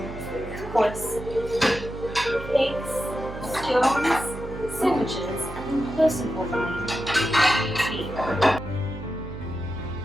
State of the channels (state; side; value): noise; right; hum, 11 dB below the sound